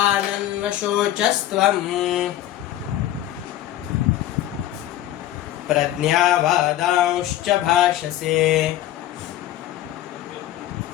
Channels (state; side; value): quieter; right; 13.3 dB